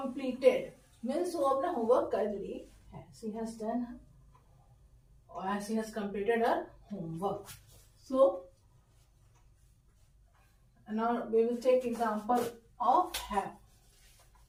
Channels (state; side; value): identical; both; correlation 1.00